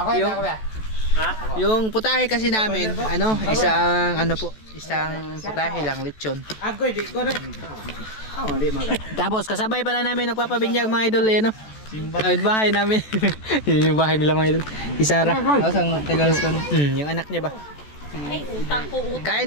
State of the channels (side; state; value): right; late; 14 ms